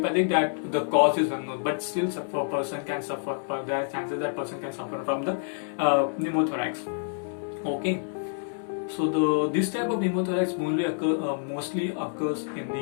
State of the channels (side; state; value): right; silent; 60 dB below the other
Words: That the cause is unknown, but still a person can suffer. There are chances that person can suffer from the pneumothorax. Okay. So this type of pneumothorax mostly occurs in